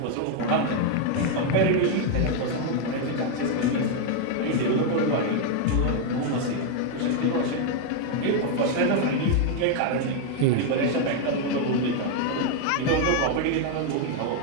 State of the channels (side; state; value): both; different; correlation 0.01